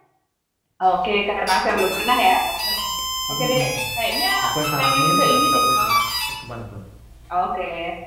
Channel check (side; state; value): both; identical; correlation 1.00